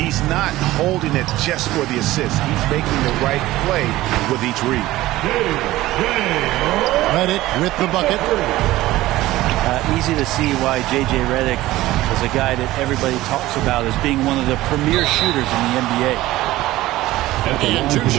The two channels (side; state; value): left; quieter; 16.8 dB